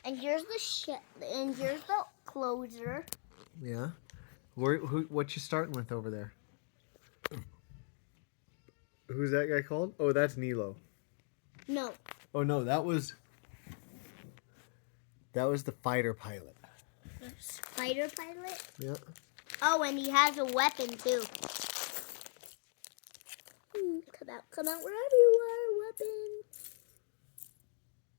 And here's the ship. And here's the closer. Yeah. What you starting with over there? Who's that guy called? Oh, that's Nilo. No. Oh no, that was the fighter pilot. Fighter pilot? Yeah. Oh, and he has a weapon too. Come out wherever you are, weapon.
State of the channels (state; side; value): silent; right; 52 dB below the other